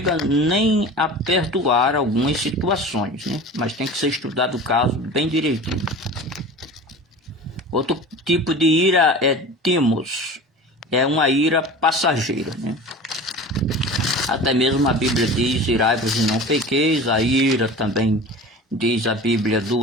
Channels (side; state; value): both; normal; correlation 0.36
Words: nem a perdoar algumas situações, né? Mas tem que ser estudado o caso bem direitinho. Outro tipo de ira é timos, é uma ira passageira, né? Até mesmo a Bíblia diz, irai-vos e não pequeis. A ira também diz a Bíblia,